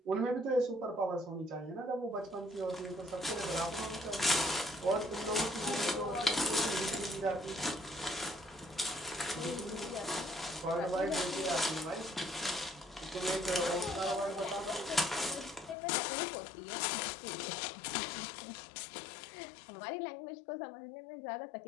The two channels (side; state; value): right; drops out; at 15.8 s